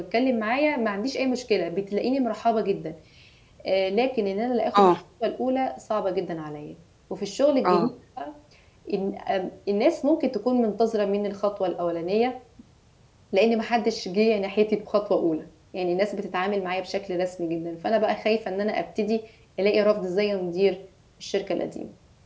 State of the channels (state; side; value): identical; both; correlation 1.00